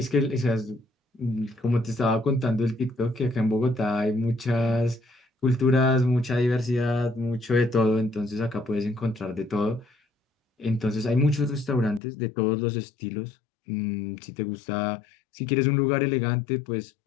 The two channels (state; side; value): drops out; right; at 12.0 s